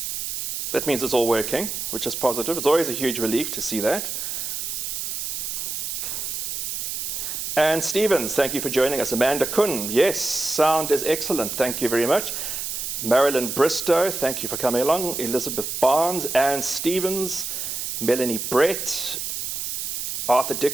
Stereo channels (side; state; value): right; noise; hiss, 4 dB below the sound